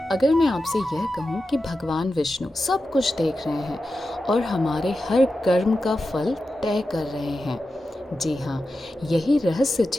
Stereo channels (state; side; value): normal; both; correlation 0.91